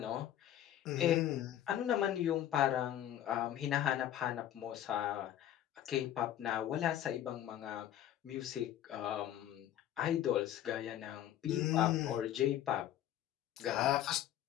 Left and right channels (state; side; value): quieter; right; 11.7 dB